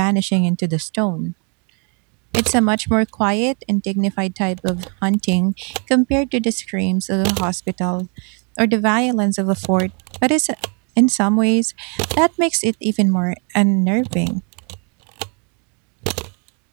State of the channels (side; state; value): left; quieter; 37.6 dB